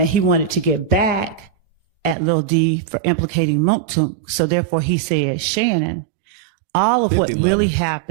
he wanted to get back at Lil D for implicating Mooktunk. So therefore he said, Shannon, all of what 50-11. really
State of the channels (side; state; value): left; drops out; at 2.1 s